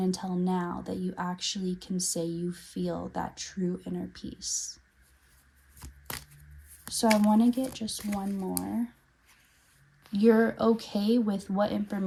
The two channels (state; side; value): identical; both; correlation 1.00